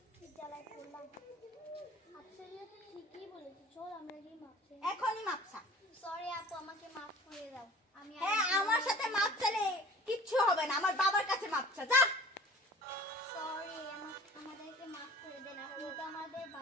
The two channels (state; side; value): normal; both; correlation 0.45